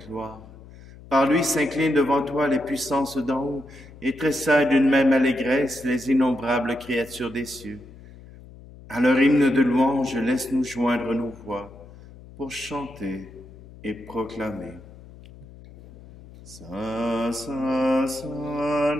Par lui s'inclinent devant toi les puissances d'en haut, et tressaillent d'une même allégresse les innombrables créatures des cieux. À leur hymne de louange, laisse-nous joindre nos voix, pour chanter et proclamer. Saint, Saint, Saint,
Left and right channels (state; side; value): noise; left; hum, 19 dB below the sound